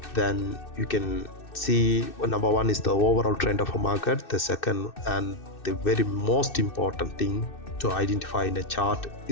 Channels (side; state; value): right; late; 2.6 ms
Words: then you can see, number one is the overall trend of a market. The second and the very most important thing to identify in a chart